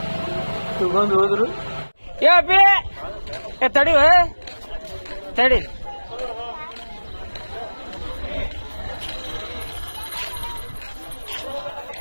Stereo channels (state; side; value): inverted; both; correlation -1.00